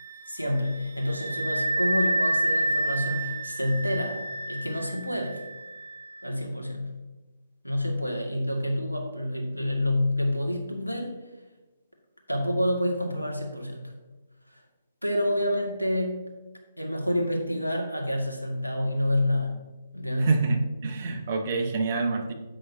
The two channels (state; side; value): inverted; both; correlation -0.89